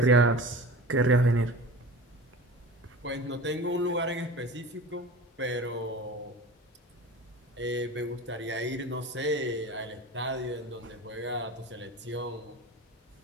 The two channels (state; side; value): normal; both; correlation 0.34